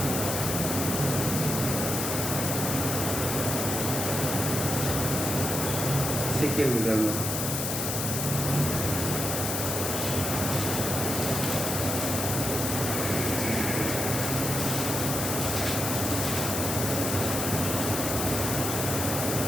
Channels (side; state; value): left; noise; hiss, 2 dB below the sound